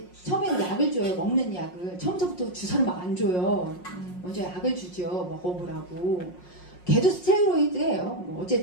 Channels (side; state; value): right; late; 5.5 ms